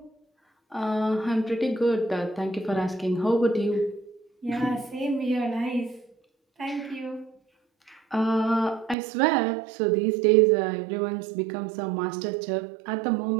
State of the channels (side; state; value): left; drops out; at 9.0 s